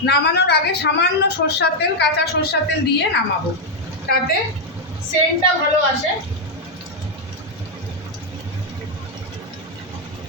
নামানোর আগে সামান্য সরষের তেল, কাঁচা সরষের তেল দিয়ে নামাবো, তাতে সেন্টটা ভালো আসে।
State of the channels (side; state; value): both; normal; correlation 0.00